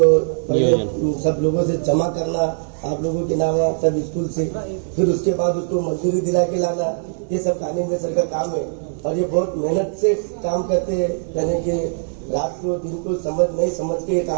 पहले सब लोगों से जमा करना, आप लोगों के नाम सब स्कूल से, फिर उसके बाद उसको मजदूरी दिला के लाना, ये सब कानिंदे सर का काम है और ये बहुत मेहनत से काम करते हैं, यानी कि रात को दिन को नहीं समझ के ये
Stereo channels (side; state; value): left; silent; 63 dB below the other